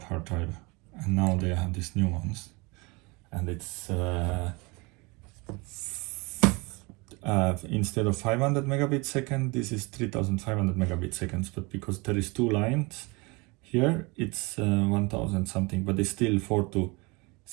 hard drive, and now they have these new ones, and it's instead of 500 megabits second, this is 3500 megabits seconds. But because there is 2 lines here, it's 1000 something, but it's still 4 to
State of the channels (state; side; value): quieter; left; 26.9 dB